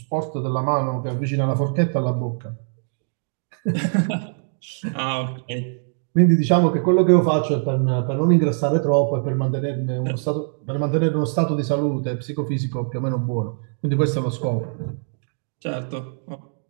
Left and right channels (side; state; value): left; silent; digital silence